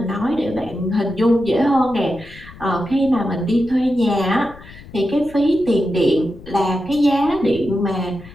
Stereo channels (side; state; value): left; noise; rumble, 19 dB below the sound